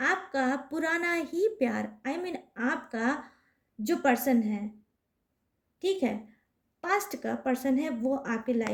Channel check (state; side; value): identical; both; correlation 1.00